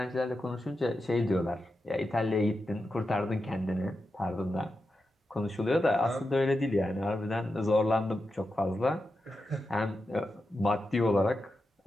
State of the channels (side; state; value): both; normal; correlation 0.89